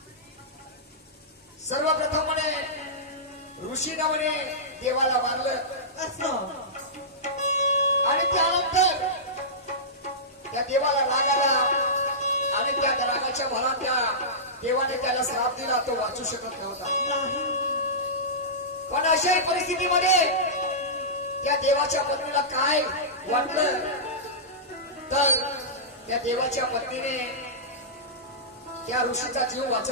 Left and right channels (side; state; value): both; normal; correlation -0.17